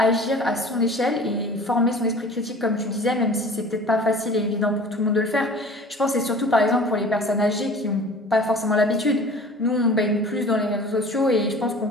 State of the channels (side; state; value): both; normal; correlation 0.43